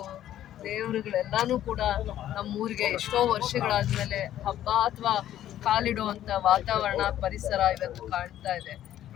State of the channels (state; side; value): quieter; right; 12.0 dB